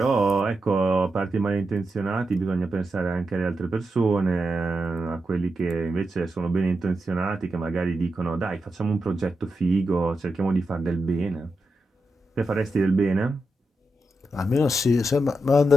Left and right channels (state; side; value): normal; both; correlation 0.87